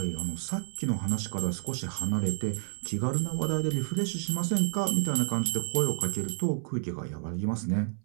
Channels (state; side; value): silent; left; 58 dB below the other